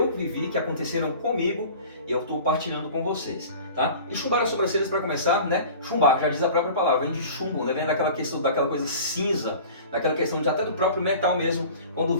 vivi, que aconteceram comigo e eu estou partilhando com vocês, tá? E chumbar as sobrancelhas para começar, Chumbar, já diz a própria palavra, vem de chumbo, Vem daquela questão, daquela coisa cinza, daquela questão até do próprio metal mesmo, quando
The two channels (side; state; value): both; inverted; correlation -0.41